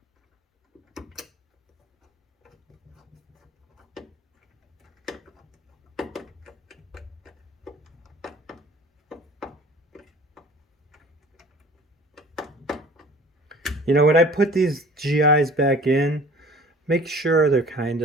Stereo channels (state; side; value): normal; both; correlation 0.47